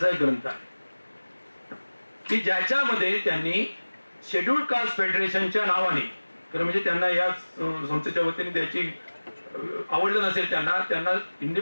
एक ग्रंथ आहे की ज्याच्यामध्ये त्यांनी शेड्यूल्ड कास्ट फेडरेशनच्या नावाने, म्हणजे त्यांना या संस्थेच्या वतीने द्यायची आवडलं नसेल, त्यांना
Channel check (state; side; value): inverted; both; correlation -1.00